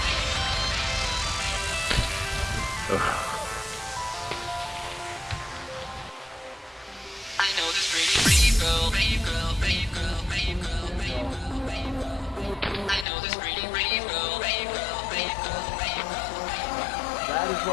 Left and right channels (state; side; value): drops out; right; at 13.1 s